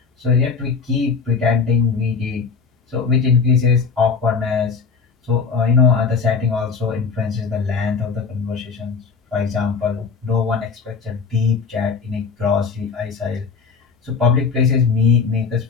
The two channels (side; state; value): right; quieter; 5.3 dB